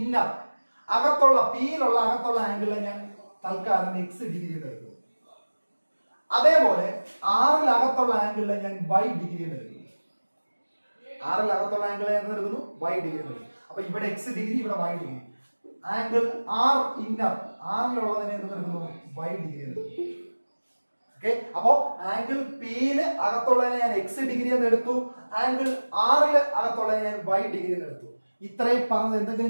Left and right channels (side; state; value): both; inverted; correlation -1.00